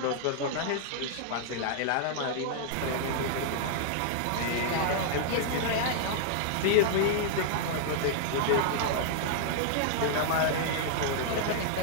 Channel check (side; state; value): both; different; correlation -0.01